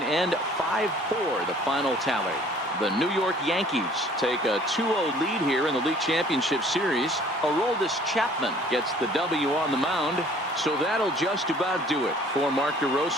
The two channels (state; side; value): normal; both; correlation 0.54